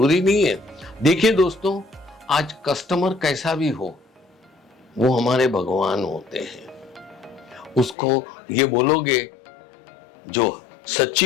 नहीं है। देखिए दोस्तों, आज कस्टमर कैसा भी हो, वो हमारे भगवान होते हैं। उसको ये बोलोगे, जो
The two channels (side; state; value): right; drops out; at 8.0 s